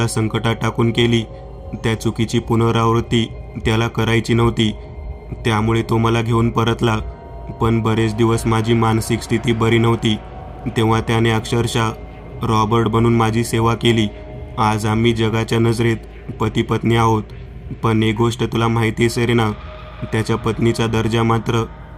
संकटात टाकून केली त्या चुकीची पुनरावृत्ती त्याला करायची नव्हती. त्यामुळे तो मला घेऊन परतला. पण बरेच दिवस माझी मानसिक स्थिती बरी नव्हती. तेव्हा त्याने अक्षरशः रॉबर्ट बनून माझी सेवा केली. आज आम्ही जगाच्या नजरेत पती पत्नी आहोत. पण एक गोष्ट तुला माहिती आहे सेरेना, त्याच्या पत्नीचा दर्जा मात्र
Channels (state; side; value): identical; both; correlation 1.00